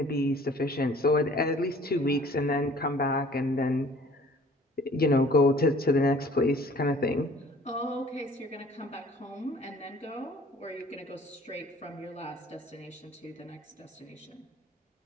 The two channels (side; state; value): both; normal; correlation 0.52